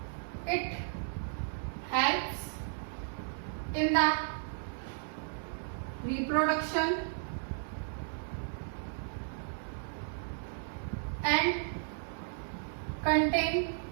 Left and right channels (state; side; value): silent; left; 55 dB below the other